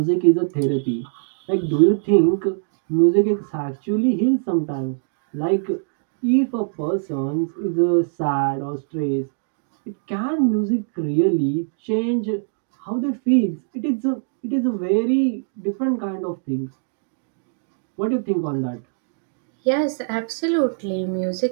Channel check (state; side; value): silent; left; digital silence